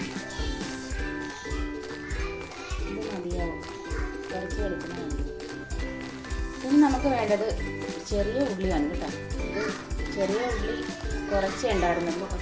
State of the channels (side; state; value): both; identical; correlation 1.00